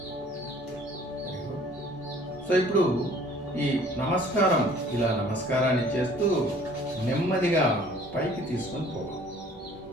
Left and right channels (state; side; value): normal; both; correlation 0.54